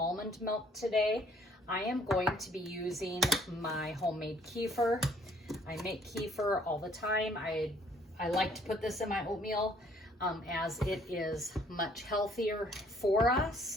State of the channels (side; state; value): both; normal; correlation 0.61